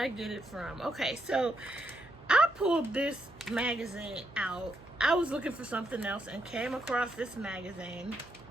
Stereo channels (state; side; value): noise; right; hum, 23 dB below the sound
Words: get it from? Okay, so I pulled this magazine out. I was looking for something else and came across this magazine.